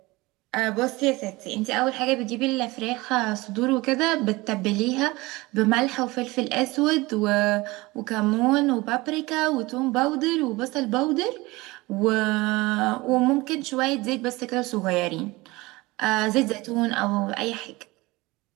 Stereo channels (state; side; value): quieter; left; 21.8 dB